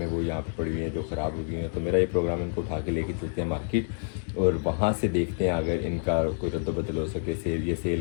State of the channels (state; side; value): silent; right; digital silence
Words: वो यहाँ पे पड़ी हुई हैं जो ख़राब हो गई हैं। तो मेरा ये प्रोग्राम इनको उठा के लेके चलते हैं मार्केट और वहाँ से देखते हैं अगर इनका कोई रद्द बदल हो सके, सेल